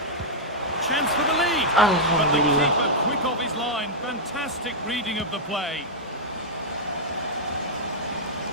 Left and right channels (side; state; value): both; normal; correlation -0.06